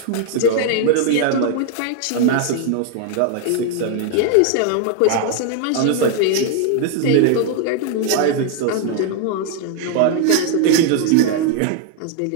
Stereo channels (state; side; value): different; both; correlation 0.00